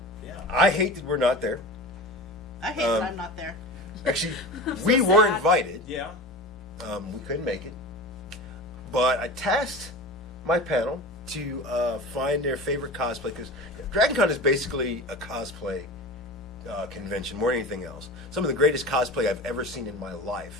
Yeah. I hate that we're not there. I hate that I'm not there. Actually, we were sad. invited. Yeah. We couldn't make it. But I tasked my panel to find their favorite cosplay, because Dragon Con is basically a cosplay convention more than anything else. Some of the greatest cosplay I've ever seen in my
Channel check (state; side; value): normal; both; correlation 0.31